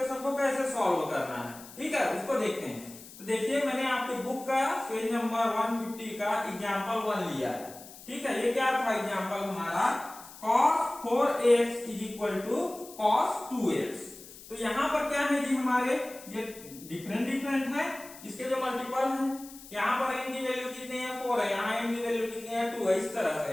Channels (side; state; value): left; noise; hiss, 17 dB below the sound